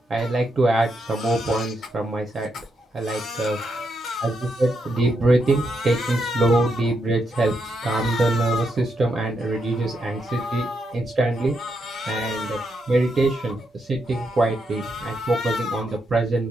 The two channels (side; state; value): both; normal; correlation 0.81